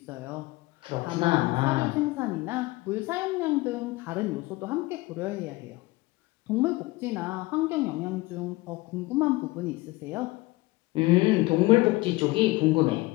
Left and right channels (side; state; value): right; quieter; 20.9 dB